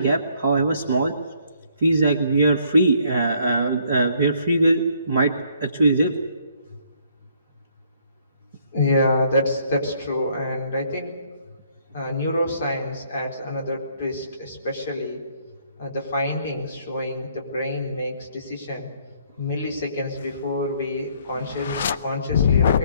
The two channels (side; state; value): both; inverted; correlation -0.65